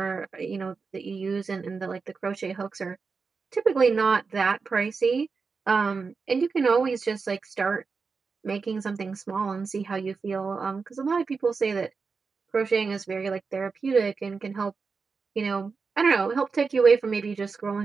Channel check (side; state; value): left; quieter; 4.9 dB